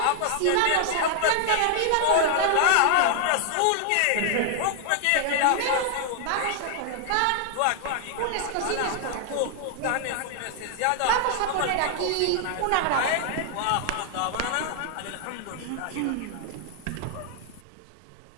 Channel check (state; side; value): different; both; correlation 0.00